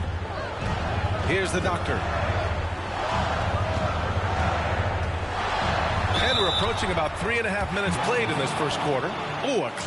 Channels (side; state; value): both; identical; correlation 1.00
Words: Here's the Doctor. And we're approaching about 3.5 minutes played in this first quarter. Oh, a